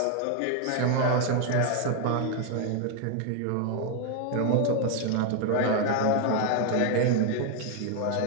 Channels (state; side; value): different; both; correlation 0.00